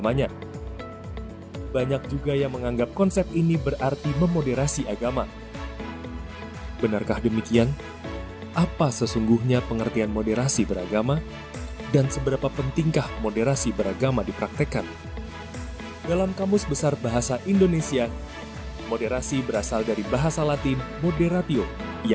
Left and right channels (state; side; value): identical; both; correlation 1.00